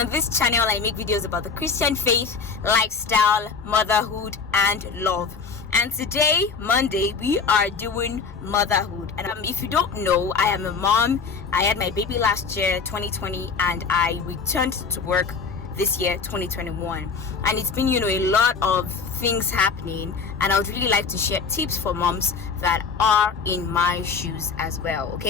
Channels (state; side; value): quieter; right; 5.3 dB